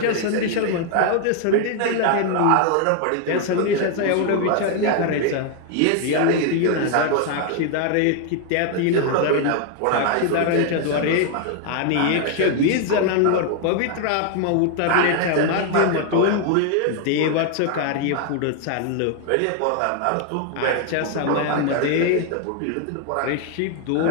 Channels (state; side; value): different; both; correlation 0.00